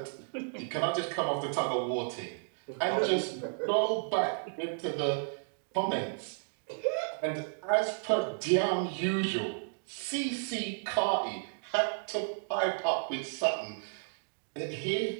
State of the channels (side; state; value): left; silent; digital silence